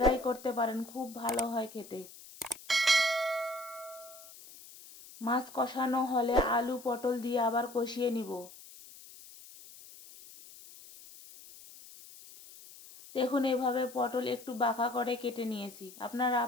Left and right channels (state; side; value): noise; left; hiss, 18 dB below the sound